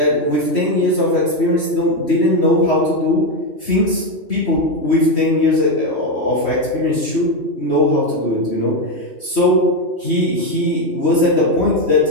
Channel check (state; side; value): late; right; 3.1 ms